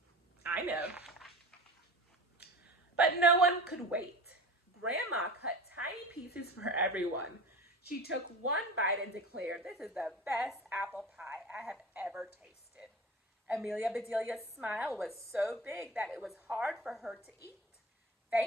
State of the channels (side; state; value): both; normal; correlation 0.34